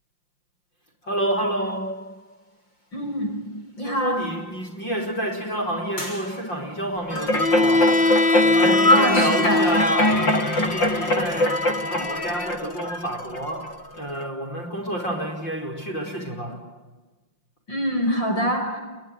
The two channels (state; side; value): late; right; 5.7 ms